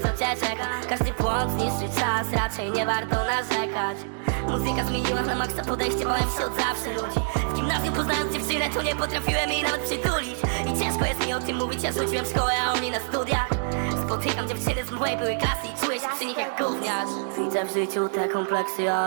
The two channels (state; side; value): silent; left; 61 dB below the other